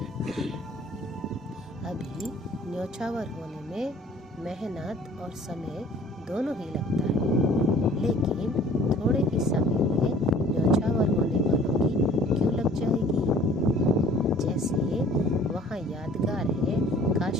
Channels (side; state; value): both; normal; correlation 0.51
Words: अभी न्यौछावर होने में मेहनत और समय दोनों ही लगता है, लेकिन थोड़े ही समय में न्यौछावर होने वालों की क्यों लग जाएगी? जैसे वहाँ यादगार है